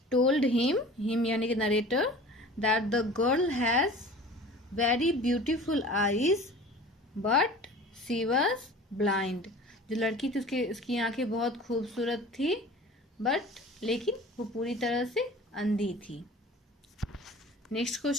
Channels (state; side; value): normal; both; correlation 0.42